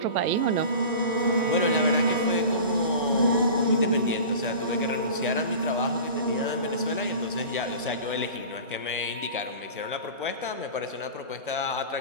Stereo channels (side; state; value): both; inverted; correlation -0.36